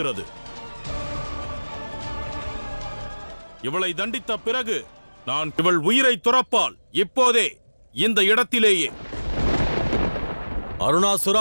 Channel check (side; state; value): both; inverted; correlation -1.00